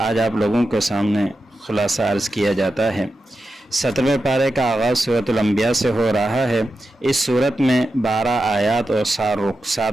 آج آپ لوگوں کے سامنے خلاصہ عرض کیا جاتا ہے۔ 17ویں پارے کا آغاز سورۃ الانبیاء سے ہو رہا ہے۔ اس سورت میں 12 آیات اور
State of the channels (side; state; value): both; normal; correlation 0.90